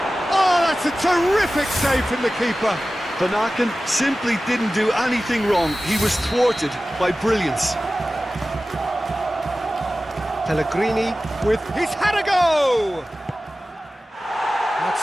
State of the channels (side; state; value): both; normal; correlation 0.96